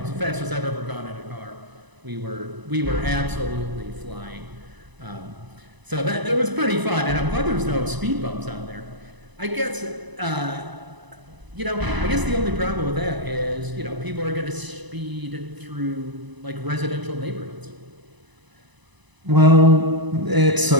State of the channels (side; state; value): left; late; 1.0 ms